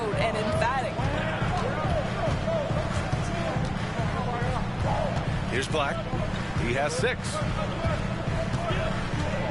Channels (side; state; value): both; identical; correlation 1.00